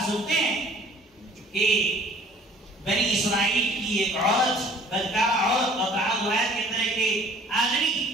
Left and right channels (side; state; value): both; normal; correlation 0.52